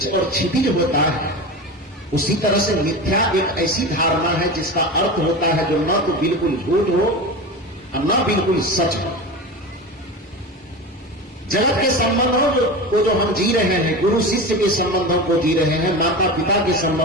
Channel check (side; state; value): both; normal; correlation 0.27